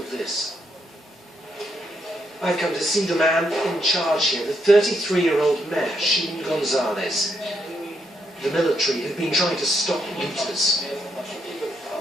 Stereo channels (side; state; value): both; normal; correlation 0.77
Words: this. I've come to see the man in charge here, the 33-year-old mayor, Sheen Gonzalez. The military have been trying to stop looters.